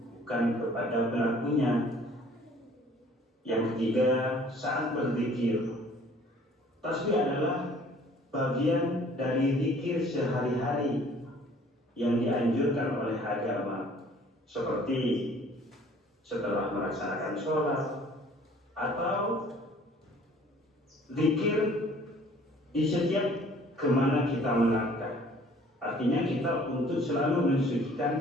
bukan kepada pelakunya. Yang ketiga, saat berzikir. Tasbih adalah bagian dari zikir sehari-hari yang dianjurkan oleh agama, seperti setelah melaksanakan sholat atau zikir di setiap kemana kita melangkah. Artinya kita untuk selalu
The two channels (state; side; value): normal; both; correlation 0.54